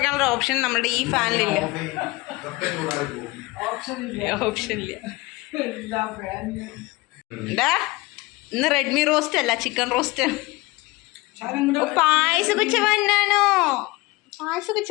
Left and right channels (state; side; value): quieter; right; 22.4 dB